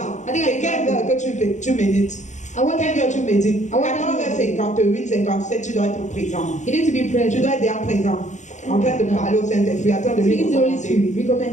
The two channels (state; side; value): late; right; 0.35 ms